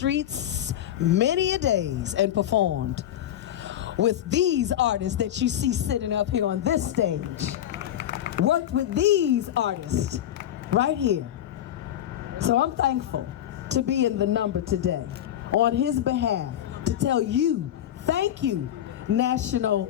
many a days and performed with these artists that you see sitting up here on this stage. Worked with these artists right here. So I'm thankful to be in the number today on his behalf to tell you, thank you,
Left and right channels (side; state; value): right; quieter; 11.4 dB